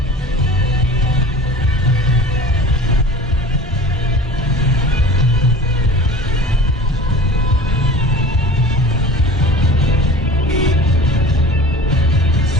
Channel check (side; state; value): both; normal; correlation 0.40